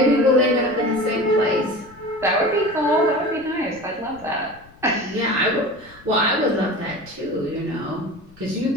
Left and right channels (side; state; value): left; noise; rumble, 25 dB below the sound